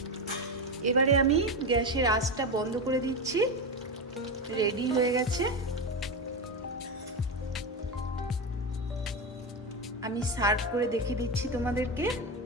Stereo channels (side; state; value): both; normal; correlation 0.15